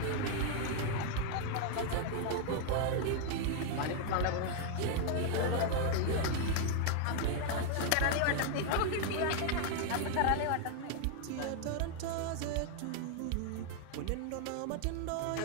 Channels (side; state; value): both; different; correlation 0.00